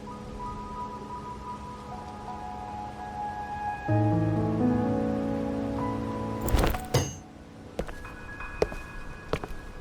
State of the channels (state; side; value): identical; both; correlation 1.00